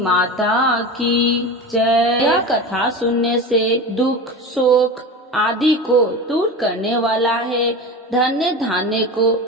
की जय। यह कथा सुनने से दुख शोक आदि को दूर करने वाला है, धन्य धान्य को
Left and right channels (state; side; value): normal; both; correlation 0.28